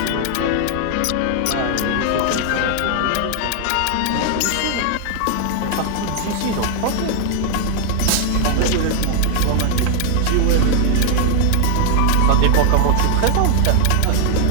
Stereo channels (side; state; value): both; different; correlation 0.00